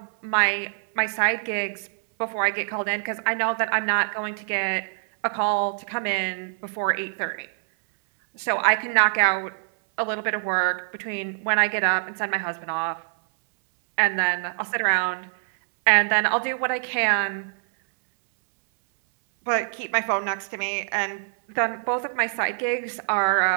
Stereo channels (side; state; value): left; silent; 62 dB below the other